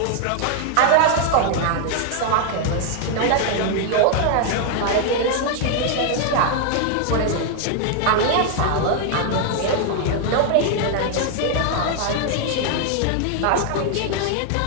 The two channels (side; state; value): both; different; correlation 0.00